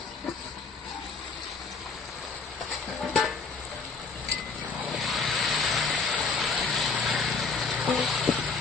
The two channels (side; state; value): right; quieter; 4.7 dB